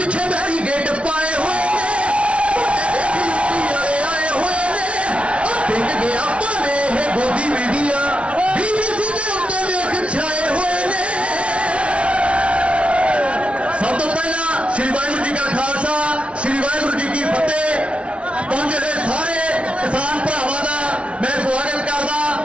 बैरीगेट पाए हुए आए हुए ने टिक गया पावे है गोदी मीडिया बीबीसी के उत्ते वेख छाए हुए ने। सब तो पहला श्री वाहिगुरू जी का खालसा श्री वाहिगुरू जी की फतेह। पहुंचे हुए सारे किसान भरावां दा मैं स्वागत करदा।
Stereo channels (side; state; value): left; late; 0.061 ms